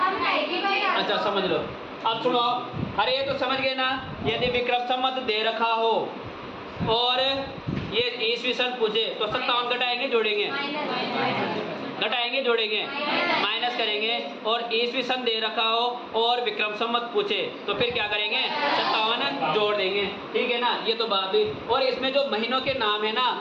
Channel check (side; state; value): both; identical; correlation 1.00